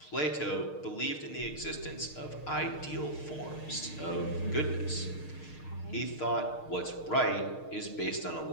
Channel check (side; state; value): right; late; 6.5 ms